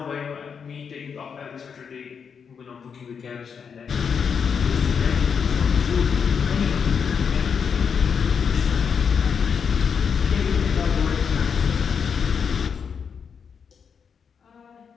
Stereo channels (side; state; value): right; quieter; 6.6 dB